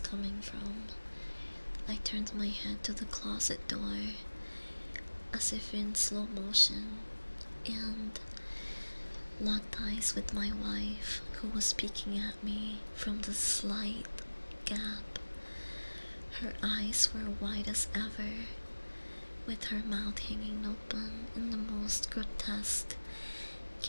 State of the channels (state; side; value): inverted; both; correlation -1.00